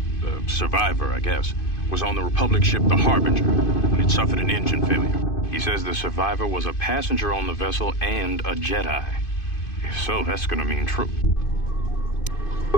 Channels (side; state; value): right; late; 2.5 ms